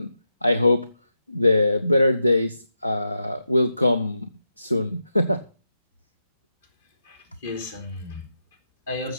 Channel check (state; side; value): inverted; both; correlation -0.87